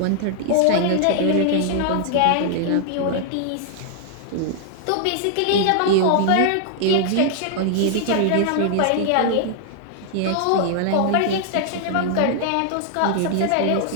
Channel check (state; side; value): different; both; correlation 0.00